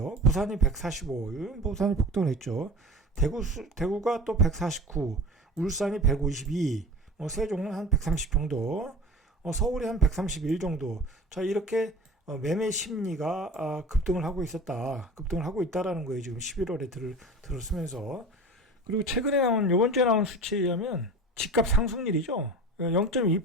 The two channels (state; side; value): normal; both; correlation 0.37